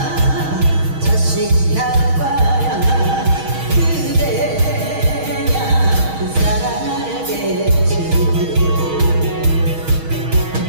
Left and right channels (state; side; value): late; left; 6.3 ms